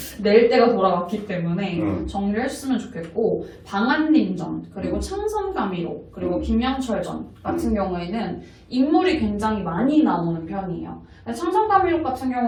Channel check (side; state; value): both; identical; correlation 1.00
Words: 낼 때가 돌아왔기 때문에 정리를 했으면 좋겠고 방한림전 그리고 창선가미록 그리고 김양철전 같은 경우에는 인물이 굉장히 많이 나오는 편이에요. 창선가미록 같은